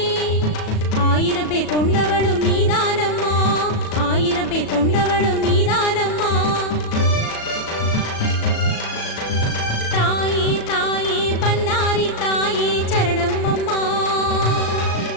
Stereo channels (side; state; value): right; late; 37 ms